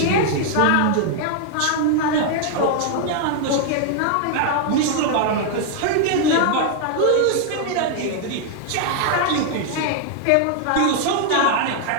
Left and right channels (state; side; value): different; both; correlation 0.00